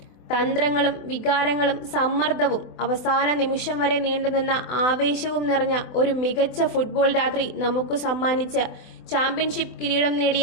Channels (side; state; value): right; late; 24 ms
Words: തന്ത്രങ്ങളും വികാരങ്ങളും സമ്മർദ്ദവും അവസാന നിമിഷം വരെ നീണ്ടുനിന്ന ആവേശവും നിറഞ്ഞ ഒരു മികച്ച ഫുട്ബോൾ രാത്രി നമുക്ക് സമ്മാനിച്ച ചാമ്പ്യൻഷിപ്പ് കിരീടം നേടിയ